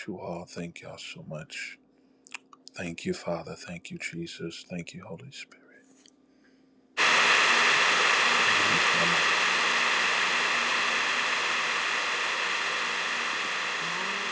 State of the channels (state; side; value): identical; both; correlation 1.00